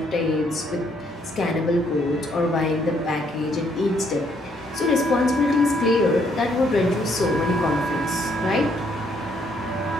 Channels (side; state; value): both; normal; correlation 0.70